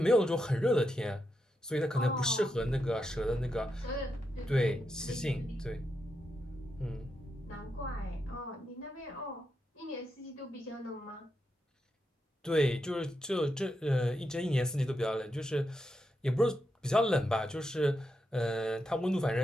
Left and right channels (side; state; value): both; normal; correlation 0.85